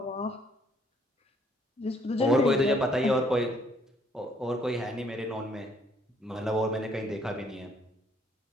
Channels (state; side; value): normal; both; correlation 0.65